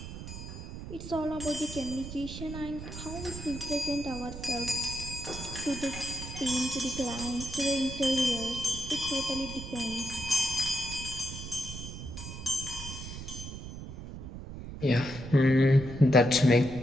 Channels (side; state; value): right; noise; rumble, 10 dB below the sound